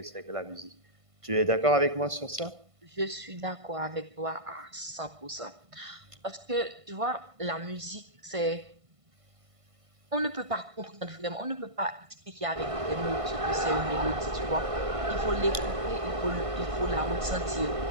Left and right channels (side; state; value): left; late; 1.5 ms